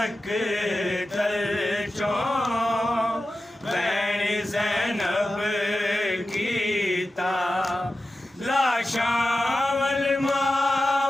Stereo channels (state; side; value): normal; both; correlation 0.93